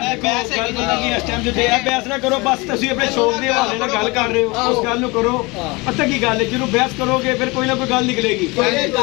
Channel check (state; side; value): quieter; right; 25.3 dB